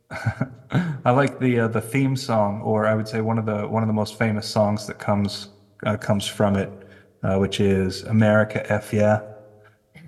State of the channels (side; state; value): both; identical; correlation 1.00